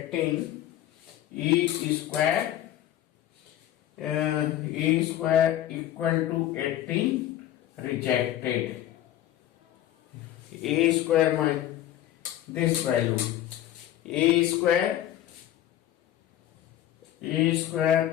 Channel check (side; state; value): right; quieter; 12.7 dB